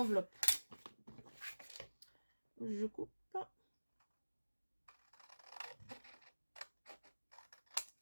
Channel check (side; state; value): both; inverted; correlation -1.00